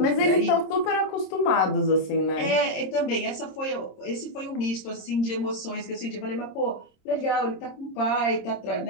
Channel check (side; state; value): right; late; 26 ms